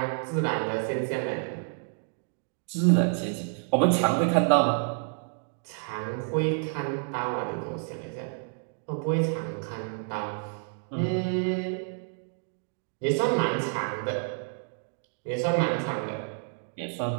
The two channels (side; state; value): left; silent; 56 dB below the other